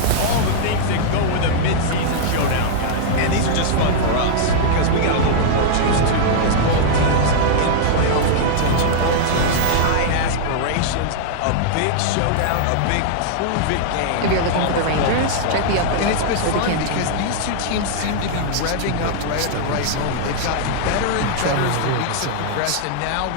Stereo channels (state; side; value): different; both; correlation -0.01